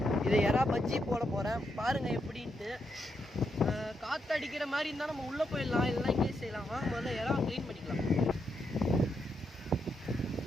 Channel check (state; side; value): normal; both; correlation 0.81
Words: இது எறா பஜ்ஜி போட போகிறேன், பாருங்கள் எப்படின்ட்டு. காற்று அடிக்கிற மாதிரி இருந்தால் நம்ம உள்ளே போயிடலாம், இல்லைனா இங்கே செய்யலாமா. முதல்ல எறா க்ளீன் பண்ணிக்கலாம்.